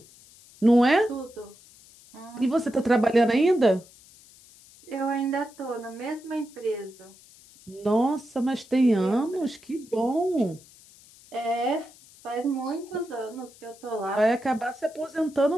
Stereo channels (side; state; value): left; noise; hiss, 24 dB below the sound